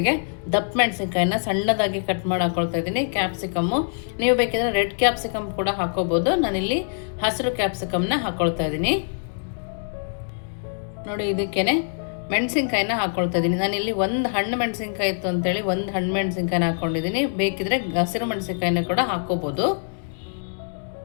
ದಪ್ಪ ಮೆಣಸಿನ್ಕಾಯಿನ ಸಣ್ಣದಾಗಿ ಕಟ್ ಮಾಡಿ ಹಾಕ್ಕೊಳ್ತಾ ಇದ್ದೀನಿ. ಕ್ಯಾಪ್ಸಿಕಮ್ಮು ನೀವು ಬೇಕಿದ್ರೆ ರೆಡ್ ಕ್ಯಾಪ್ಸಿಕಮ್ ಕೂಡ ಹಾಕ್ಕೋಬೋದು. ನಾನಿಲ್ಲಿ ಹಸಿರು ಕ್ಯಾಪ್ಸಿಕಮ್ನ ಹಾಕ್ಕೊಳ್ತಾ ಇದ್ದೀನಿ. ನೋಡಿ, ಇದಕ್ಕೇನೆ ಮೆಣಸಿನ್ಕಾಯಿನ ಹಾಕ್ಕೊಳ್ತಾ ಇದ್ದೀನಿ. ನಾನಿಲ್ಲಿ ಒಂದು ಹಣ್ಣು ಮೆಣಸಿನ್ಕಾಯಿ ಇತ್ತು ಅಂತೇಳಿ ಒಂದು ಹಣ್ಣು ಮೆಣಸಿನ್ಕಾಯಿನ ಹಾಕ್ಕೊಂಡಿದ್ದೀನಿ. ಬೇಕಿದ್ರೆ ಹಸಿರು ಮೆಣಸಿನ್ಕಾಯಿನ ಕೂಡ ಹಾಕ್ಕೋಬೋದು.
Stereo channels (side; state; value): right; silent; digital silence